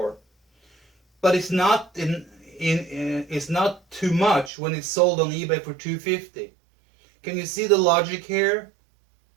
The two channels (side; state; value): left; drops out; at 4.5 s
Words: But it's not it's not too much when it's sold on eBay for $250. Can you see the logic here?